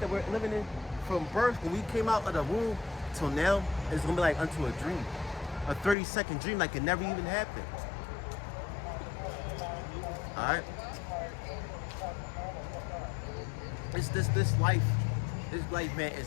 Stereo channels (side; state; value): right; drops out; at 6.0 s